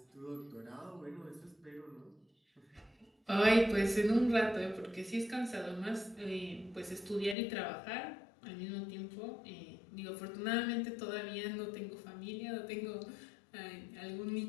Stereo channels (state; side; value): drops out; right; at 7.4 s